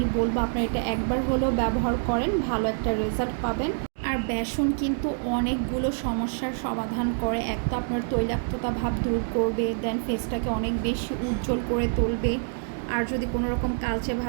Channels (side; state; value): left; silent; digital silence